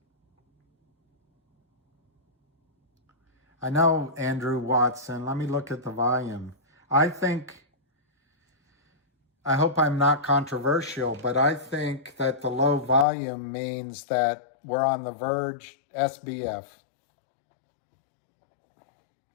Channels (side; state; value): right; drops out; at 13.1 s